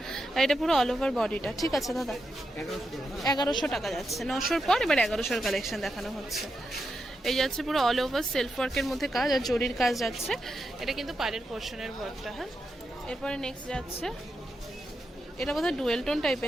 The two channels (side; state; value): both; normal; correlation 0.86